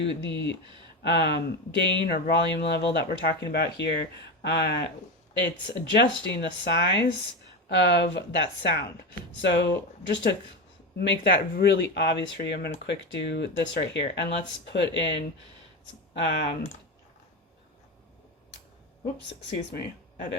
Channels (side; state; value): both; normal; correlation 0.18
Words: the gain or volume level that we're talking about here, it's adjusting the size of that sound. So just to make that really obvious for you, I'm going to quick do this right here, and let's put in oops, excuse me,